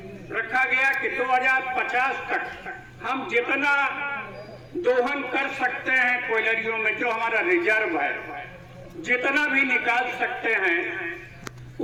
रखा गया कि 2050 तक हम जितना दोहन कर सकते हैं कोयलरियों में, जो हमारा रिजर्व है, जितना भी निकाल सकते हैं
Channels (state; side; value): identical; both; correlation 1.00